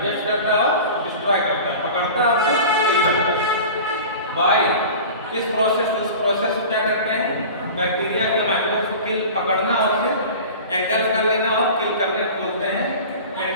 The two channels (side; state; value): both; inverted; correlation -0.36